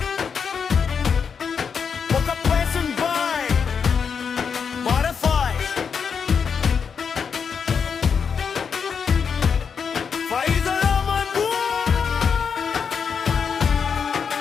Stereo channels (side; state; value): right; quieter; 6.4 dB